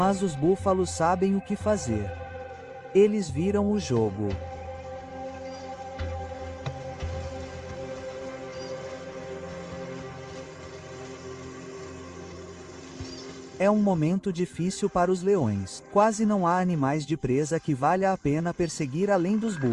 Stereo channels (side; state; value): both; identical; correlation 1.00